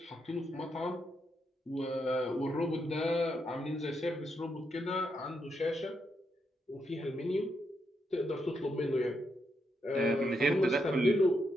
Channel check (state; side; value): normal; both; correlation 0.81